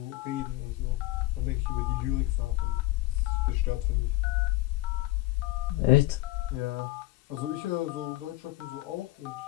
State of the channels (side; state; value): right; quieter; 18.5 dB